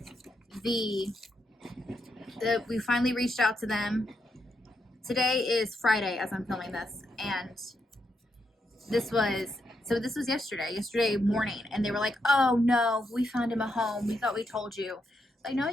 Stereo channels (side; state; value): both; normal; correlation 0.81